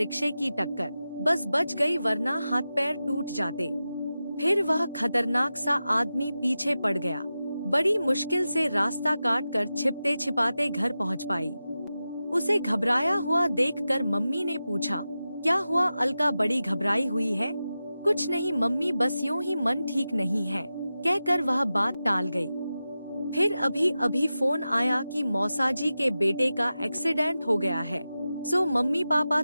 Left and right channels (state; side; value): inverted; both; correlation -0.93